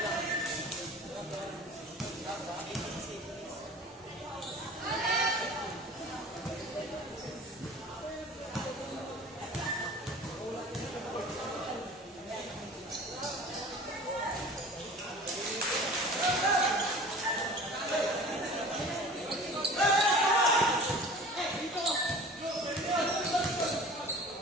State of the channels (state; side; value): normal; both; correlation 0.42